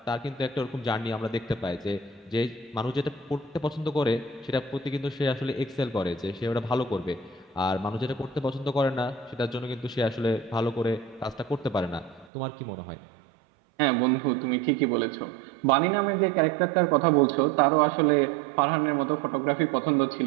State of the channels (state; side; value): drops out; left; at 12.3 s